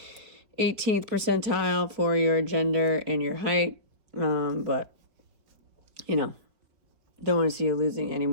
percentile for your gender and your height. But, you know, don't want to see you losing any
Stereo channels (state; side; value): late; left; 4.8 ms